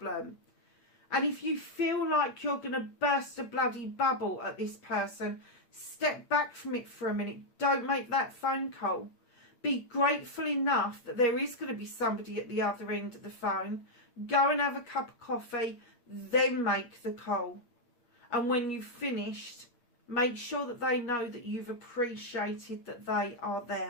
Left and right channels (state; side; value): late; right; 8.8 ms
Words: And if you feel like you're going to burst a bloody bubble at this person, step back from it for a minute. Don't make that phone call. Be grateful enough that there is going to be somebody at the other end of the phone. Go and have a cup of coffee, then make the call. And when you've finished, make sure that they know that you've appreciated that they are